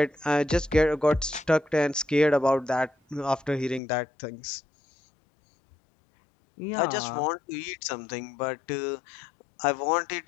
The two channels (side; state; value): right; drops out; at 3.8 s